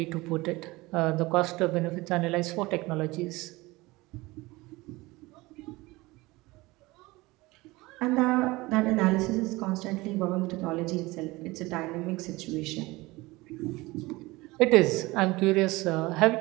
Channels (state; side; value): quieter; left; 21.3 dB